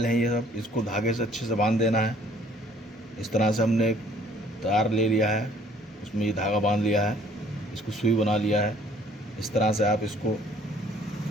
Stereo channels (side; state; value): both; normal; correlation 0.58